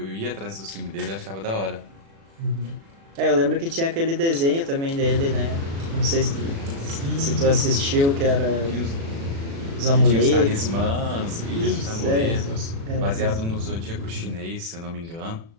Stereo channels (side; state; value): left; late; 36 ms